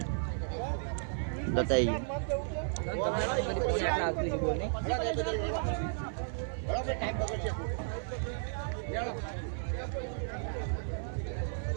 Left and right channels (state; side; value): silent; left; 55 dB below the other